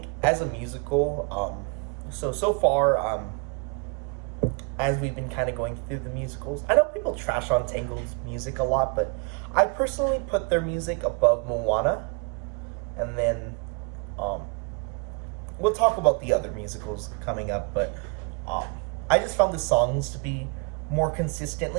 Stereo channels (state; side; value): quieter; left; 32.1 dB